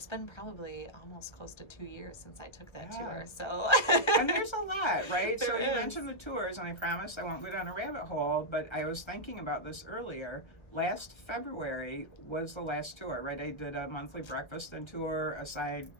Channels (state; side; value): late; right; 1.3 ms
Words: been probably almost close to 2 years since I took that tour. So and there's a lot, right? There so is. You mentioned the tours, and I promise I won't go down a rabbit hole, but I was thinking about this earlier. Last February was the last tour, right? I did a monthly breakfast and tour aside